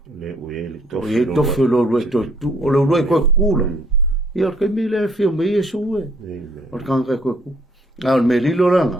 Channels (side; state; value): both; normal; correlation 0.64